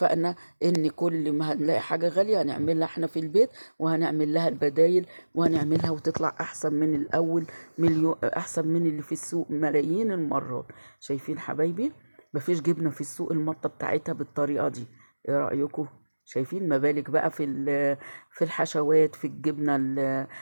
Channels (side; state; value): both; inverted; correlation -1.00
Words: ان كل ما هنلاقي حاجة غالية هنعملها احنا في البيت، وهنعمل لها البدايل، وهنعملها وتطلع احسن من الاول، احسن من اللي في السوق ملايين المرات. شايفين حبايبي؟ مفيش جبنة في السوق المطة بتاعتها بالطريقة دي. ايه رأيكم؟ شايفين؟ ما بالك بقى في الحشوات، في الجبنة